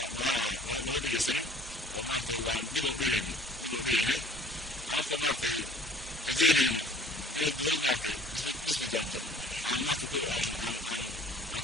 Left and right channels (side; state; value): both; normal; correlation 0.52